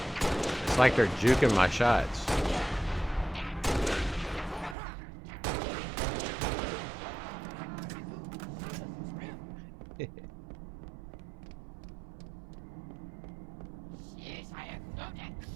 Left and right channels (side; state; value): left; drops out; at 4.8 s